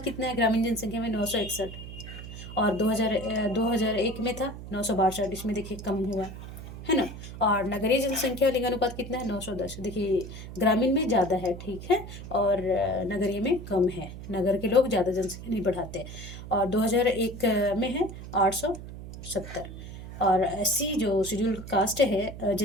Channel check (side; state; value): right; noise; hum, 12 dB below the sound